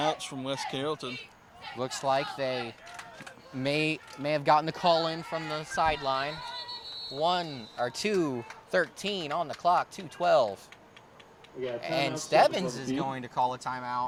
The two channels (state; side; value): identical; both; correlation 1.00